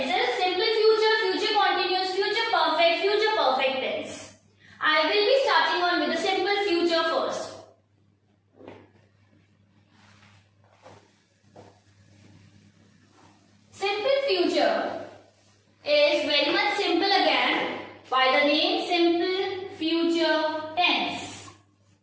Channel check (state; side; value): identical; both; correlation 1.00